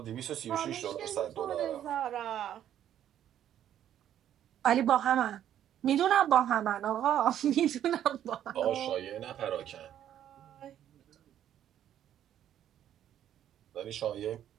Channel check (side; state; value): left; quieter; 10.8 dB